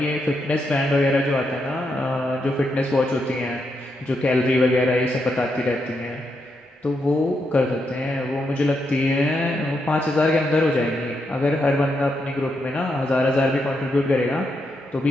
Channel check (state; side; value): normal; both; correlation 0.82